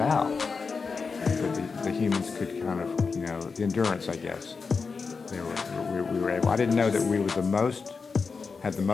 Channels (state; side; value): quieter; right; 4.9 dB